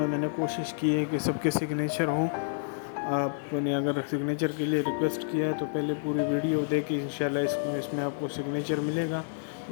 मैंने कोशिश की है कि सबके सिग्नेचर हों। आपने अगर सिग्नेचर के लिए रिक्वेस्ट किया है तो पहले पूरी वीडियो देख के इंशाल्लाह इसमें आपको सिग्नेचर मिलेगा।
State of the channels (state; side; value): silent; right; digital silence